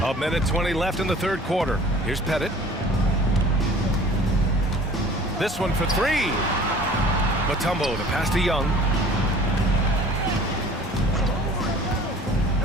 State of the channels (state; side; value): normal; both; correlation 0.47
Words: A minute 20 left in the third quarter. Here's Pettit. This one for 3. Mutombo, the pass to Young.